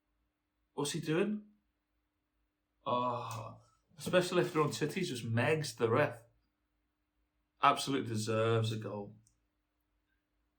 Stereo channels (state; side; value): identical; both; correlation 1.00